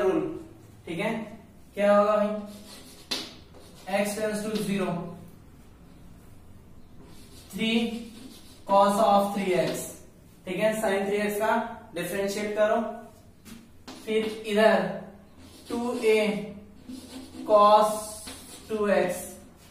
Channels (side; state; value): both; identical; correlation 1.00